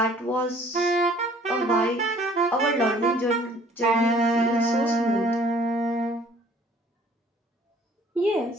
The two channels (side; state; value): both; normal; correlation 0.55